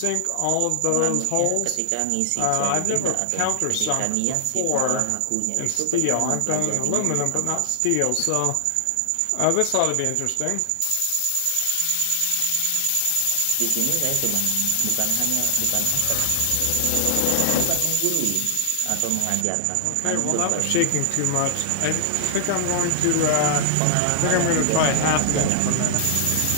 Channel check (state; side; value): different; both; correlation 0.00